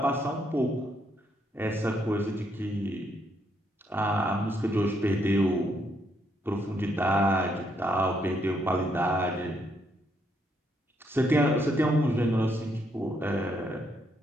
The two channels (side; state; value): both; normal; correlation 0.74